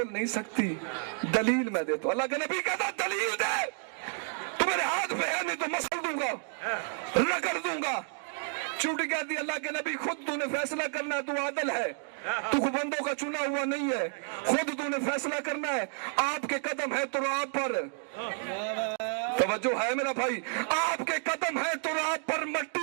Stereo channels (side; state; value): left; silent; 57 dB below the other